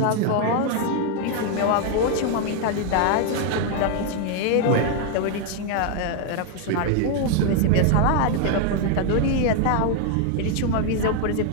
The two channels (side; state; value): both; different; correlation 0.00